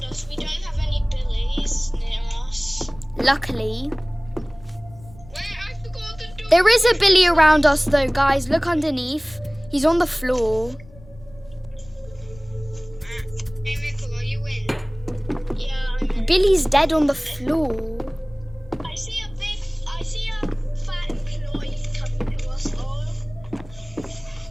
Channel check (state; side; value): noise; left; rumble, 22 dB below the sound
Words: us. We don't have any Billies near us. Luckily. Wait, I forgot the door. There is a Billy around us though, guys. Look underneath. He's on the floor. Hey, Michael, are you in? Billy's dead on the floor. I see a fat employee coming to us all.